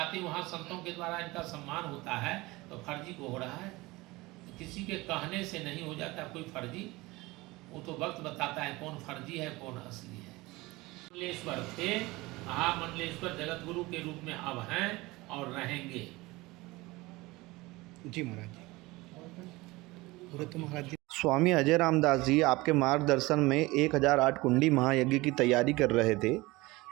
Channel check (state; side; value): quieter; left; 21.3 dB